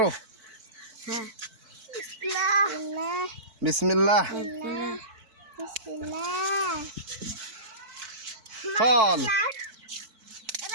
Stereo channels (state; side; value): late; left; 4.5 ms